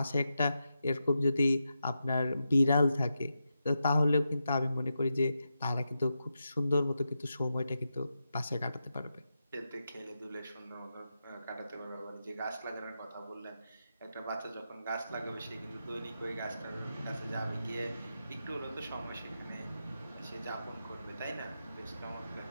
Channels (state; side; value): inverted; both; correlation -0.87